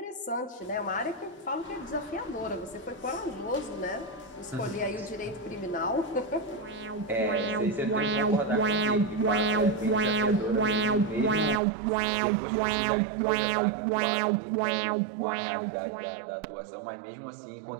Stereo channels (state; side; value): drops out; left; at 11.6 s